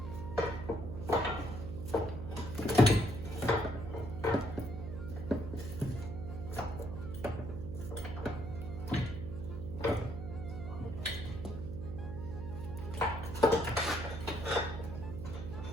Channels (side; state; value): right; noise; hum, 6 dB below the sound